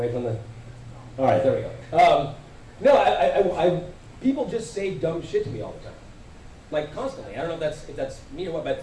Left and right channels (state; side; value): identical; both; correlation 1.00